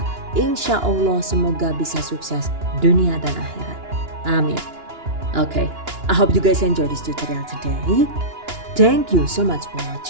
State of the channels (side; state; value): left; late; 2.9 ms